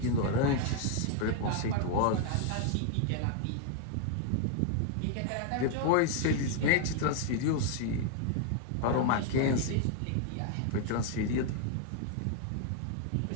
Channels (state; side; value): different; both; correlation 0.00